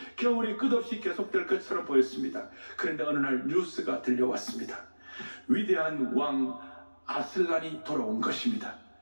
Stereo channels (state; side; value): inverted; both; correlation -1.00